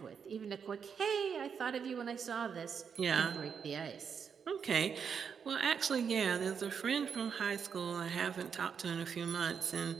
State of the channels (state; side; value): quieter; left; 6.8 dB